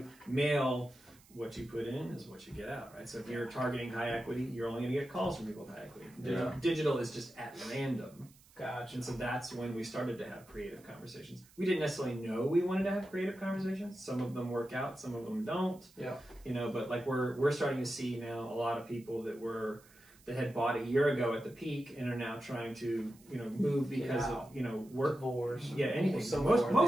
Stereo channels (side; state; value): right; noise; hiss, 26 dB below the sound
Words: mail. What you put in is what you get out, right? So if you're targeting high equity, you're only going to get calls from people with high equity. Digital is just at random. Gotcha. And so that's when we started to have creative conversations. We didn't necessarily know we wanted to have creative conversations. Some of them work out, some of them don't. You know, but like we're starting to see now a lot of people that had bought a year ago at the peak and are now trying to, move because of, work wars. Anything. So